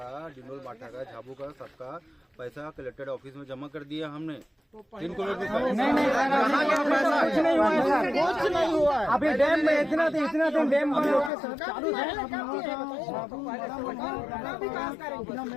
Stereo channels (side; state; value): right; drops out; at 11.3 s